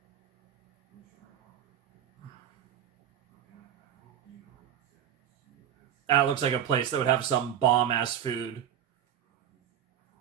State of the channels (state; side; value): quieter; left; 10.0 dB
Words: That looks like a place that would have some bomb-ass food.